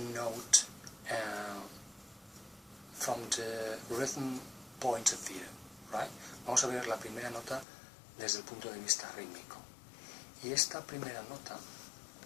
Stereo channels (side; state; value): right; drops out; at 7.7 s